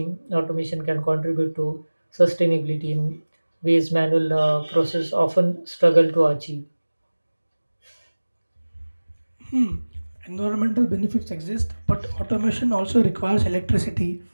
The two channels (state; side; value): inverted; both; correlation -1.00